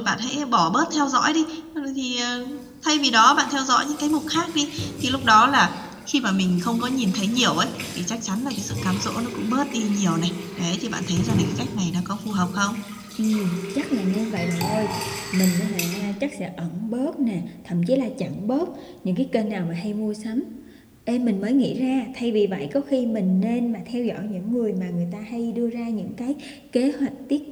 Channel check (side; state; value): both; identical; correlation 1.00